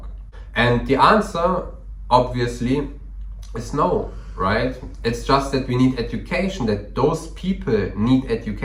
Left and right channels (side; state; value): both; identical; correlation 1.00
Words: And the answer, obviously, is no, right? It's just that we need education, that those people need